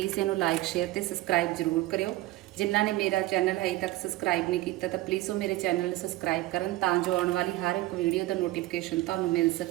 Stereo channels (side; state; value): left; quieter; 17.5 dB